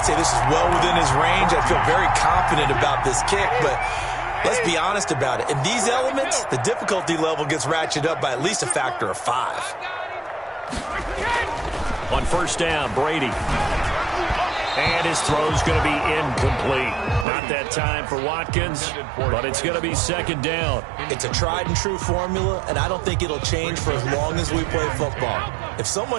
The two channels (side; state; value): left; drops out; at 17.2 s